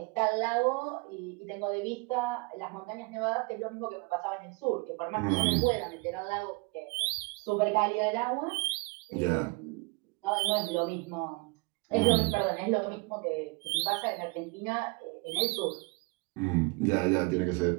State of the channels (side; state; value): left; quieter; 28.9 dB